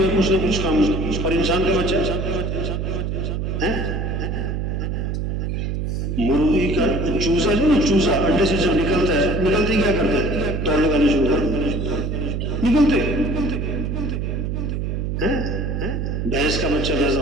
ہے کچھ نہ کچھ کام. اور انسان کا بچہ مرغی کا چوزا جو نا، چوزا انڈے سے جب نکلتا ہے، نکلتے ہی کیا کرتا ہے؟ دوڑ لگانے شروع کر نکلتے. بھینس کا بچہ پیدا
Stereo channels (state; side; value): noise; right; hum, 2 dB below the sound